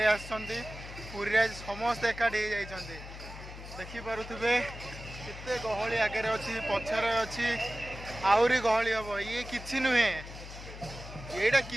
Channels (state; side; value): noise; left; hum, 12 dB below the sound